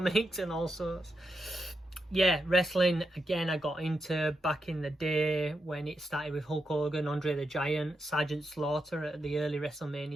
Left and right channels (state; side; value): normal; both; correlation 0.84